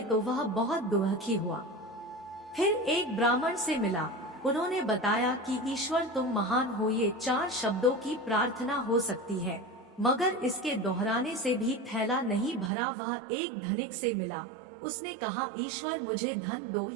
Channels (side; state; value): left; drops out; at 12.7 s